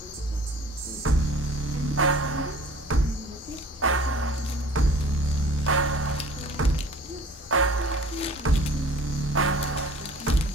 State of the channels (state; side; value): normal; both; correlation 0.47